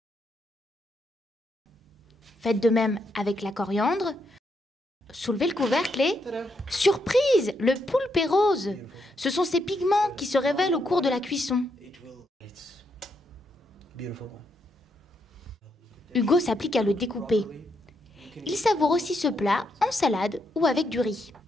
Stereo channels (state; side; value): normal; both; correlation 0.79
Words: Faites de même avec la coriandre. Soulevez le couvercle et... Surprise! Le poulpe est rose. Ce sont ces pigments qui se révèlent au cours de la cuisson. Hugo s'applique à le découper. Il savoure aussi ce plat en salade ou avec du riz.